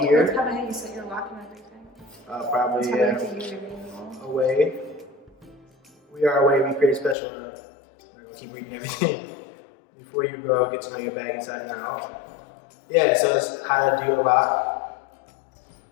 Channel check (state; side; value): drops out; right; at 7.2 s